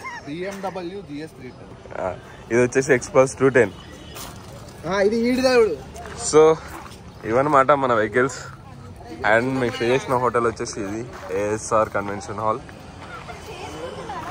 ఇది వచ్చేసి ఎక్స్పల్స్ 210. సో ఇవన్నమాట మన వెహికల్స్. అండ్ మీకు స్టే చేసిన హోటల్ వచ్చేసి ఇది ASR కన్వెన్షన్ హాల్.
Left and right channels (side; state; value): both; identical; correlation 1.00